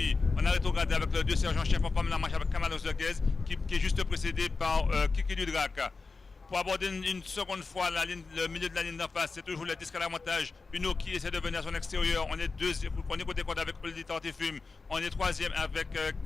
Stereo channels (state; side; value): quieter; right; 4.1 dB